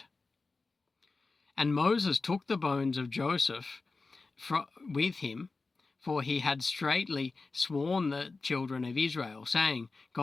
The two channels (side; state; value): right; quieter; 3.9 dB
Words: And Moses took the bones of Joseph with him, for he had straitly sworn the children of Israel, saying,